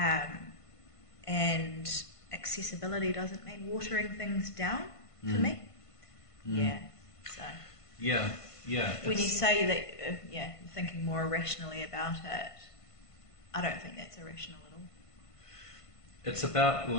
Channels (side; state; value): right; late; 1.5 ms